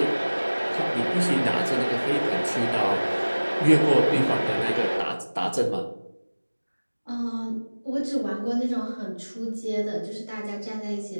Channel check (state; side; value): inverted; both; correlation -1.00